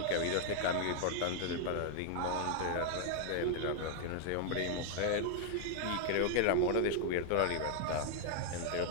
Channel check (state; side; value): different; both; correlation 0.00